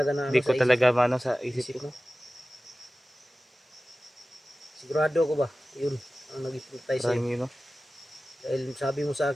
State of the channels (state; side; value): normal; both; correlation 0.96